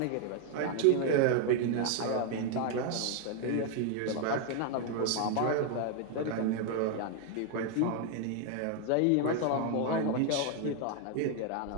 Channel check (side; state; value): both; different; correlation 0.00